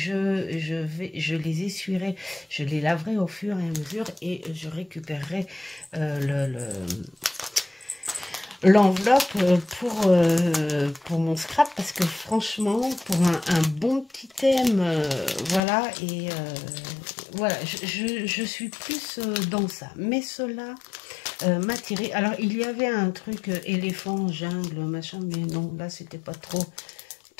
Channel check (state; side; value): drops out; right; at 15.6 s